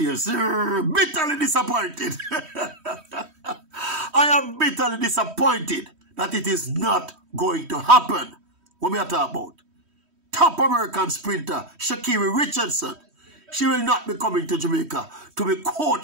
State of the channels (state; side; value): late; left; 3.1 ms